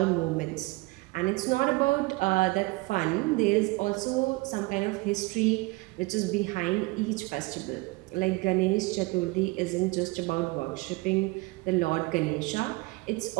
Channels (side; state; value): left; quieter; 23.7 dB